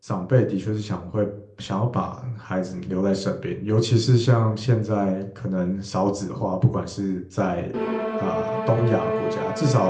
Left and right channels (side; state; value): both; identical; correlation 1.00